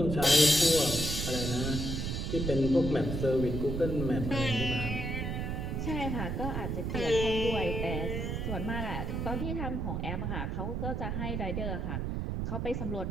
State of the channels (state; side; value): noise; right; rumble, 2 dB below the sound